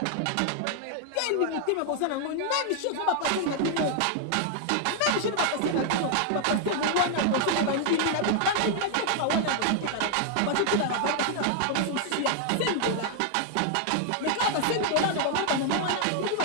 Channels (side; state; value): both; different; correlation 0.00